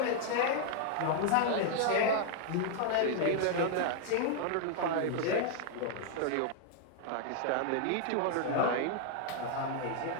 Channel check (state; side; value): different; both; correlation 0.00